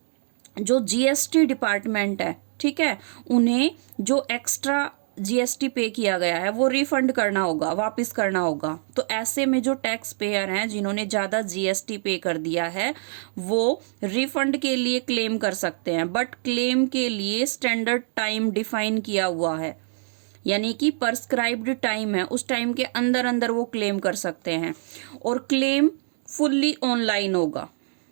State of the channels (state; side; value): silent; left; digital silence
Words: जो जीएसटी डिपार्टमेंट है, ठीक है, उन्हें जो एक्स्ट्रा जीएसटी पे किया गया है वो रिफंड करना होगा, वापस करना होगा। तो ऐसे में जो टैक्स पेयर हैं जिन्होंने ज़्यादा जीएसटी पे कर दिया है वो रिफंड के लिए क्लेम कर सकते हैं, बट क्लेम के लिए स्टैंडर्ड टाइम डिफाइन किया हुआ है, यानी कि प्रिस्क्राइब्ड टाइम है, उस टाइम के अंदर अंदर वो क्लेम कर सकते हैं और क्लेम फुल्ली ऑनलाइन होगा।